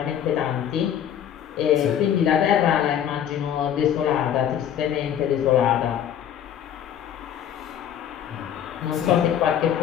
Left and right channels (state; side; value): quieter; right; 9.7 dB